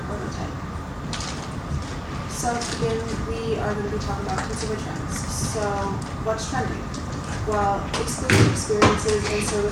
prototype. So to begin, we are going to be talking about consumer trends. So what's trending? Well, exclusive experiences and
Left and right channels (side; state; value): both; identical; correlation 1.00